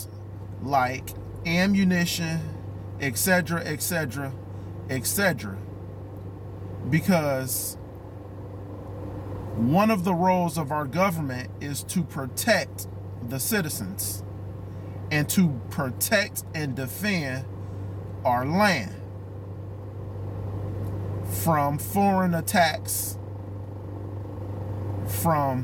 like ammunition, etc., etc., etc. Because one of the roles of our government is to protect the citizens and to protect and defend our land from foreign attacks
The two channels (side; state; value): both; identical; correlation 1.00